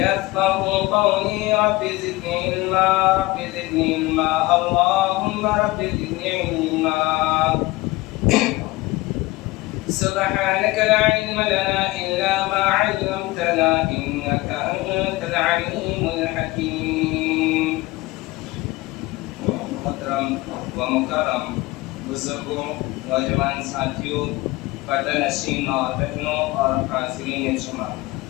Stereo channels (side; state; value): right; quieter; 20.2 dB